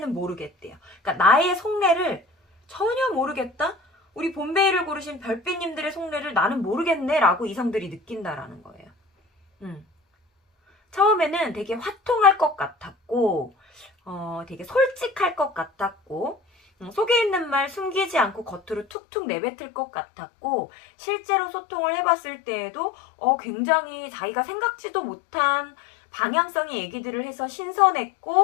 모르겠대요. 그러니까 나의 속내를 전혀 모르겠다? 우리 본베이를 고르신 별빛님들의 속내를 나는 모르겠네 라고 이성들이 느낀다라는 거예요. 처음에는 되게 화통할 것 같았고 되게 솔직할 것 같았고 속에 있는 말 숨기지 않고 겉으로 툭툭 내뱉을 것 같았고, 실제로 소통을 해봤을 때에도 굉장히 자기가 생각지도 못한 방향성의 얘기들을 해서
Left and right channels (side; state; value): right; drops out; at 18.9 s